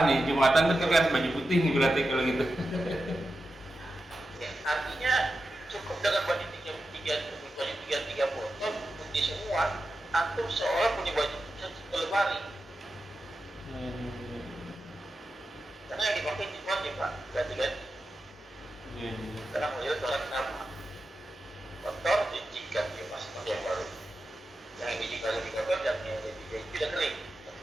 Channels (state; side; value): normal; both; correlation 0.91